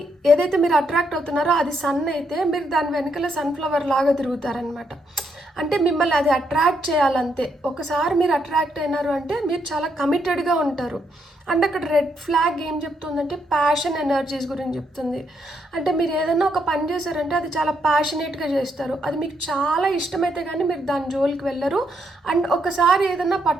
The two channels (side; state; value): both; normal; correlation 0.77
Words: ఏదైతే మీరు అట్రాక్ట్ అవుతున్నారో అది సన్ అయితే మీరు దాని వెనకాల సన్ఫ్లవర్ లాగా తిరుగుతారనమాట. అంటే మిమ్మల్ని అది అట్రాక్ట్ చేయాలంతే. ఒకసారి మీరు అట్రాక్ట్ అయినారు అంటే మీరు చాలా కమిటెడ్గా ఉంటారు. అండ్ అక్కడ రెడ్ ఫ్లాగ్ ఏం చెప్తుందంటే ప్యాషన్ ఎనర్జీస్ గురించి చెప్తుంది. అంటే మీరు ఏదైనా ఒక పని చేశారంటే అది చాలా ప్యాషనేట్గా చేస్తారు, అది మీకు చాలా ఇష్టమైతే కానీ మీరు దాని జోలికి వెళ్ళరు. అండ్ ఒకసారి ఏదైనా